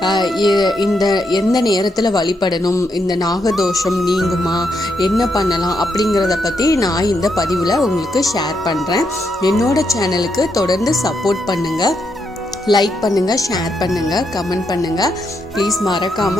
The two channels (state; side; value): normal; both; correlation 0.80